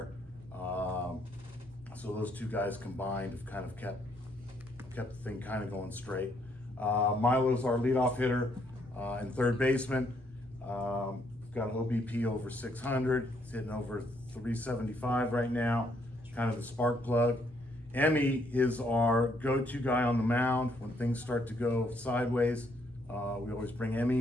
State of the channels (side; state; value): both; normal; correlation 0.71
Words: So those 2 guys combined have kind of kept the thing kind of going straight. Milo's our leadoff hitter and third baseman. Got an OBP over 600. He's hitting over 375 right now. Kind of the spark plug. Emmy is our go-to guy on the mound when things start to go sideways. We always bring